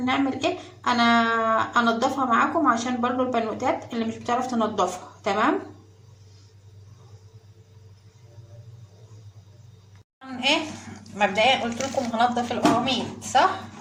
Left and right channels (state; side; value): identical; both; correlation 1.00